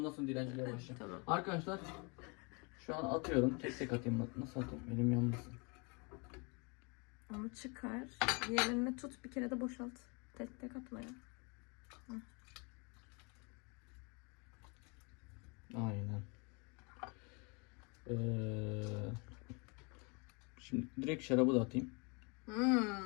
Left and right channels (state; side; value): quieter; right; 31.7 dB